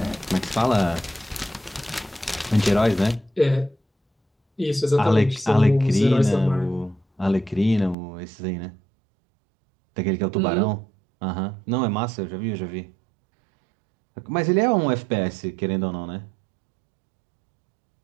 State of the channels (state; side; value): drops out; left; at 8.0 s